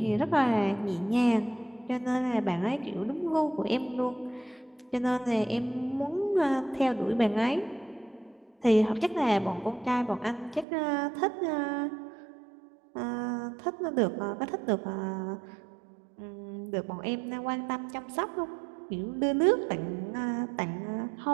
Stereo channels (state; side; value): drops out; left; at 10.7 s